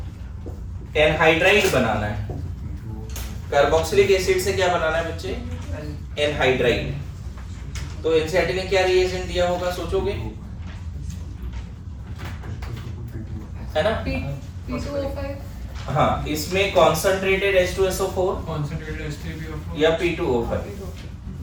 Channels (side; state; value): both; identical; correlation 1.00